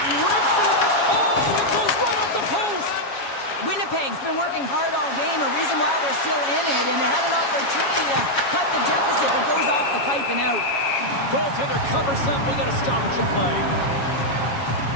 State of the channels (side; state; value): right; late; 7.3 ms